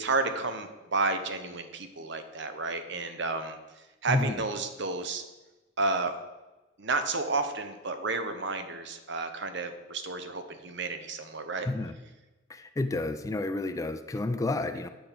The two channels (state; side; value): normal; both; correlation 0.05